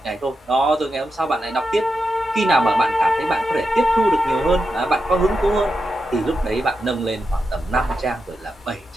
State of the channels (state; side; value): normal; both; correlation 0.88